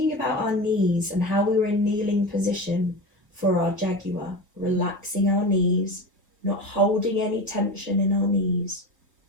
about our knees and how we were in kneeling position for our jaguar, relaxing our knees, not holding any tension in our knees,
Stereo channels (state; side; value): normal; both; correlation 0.26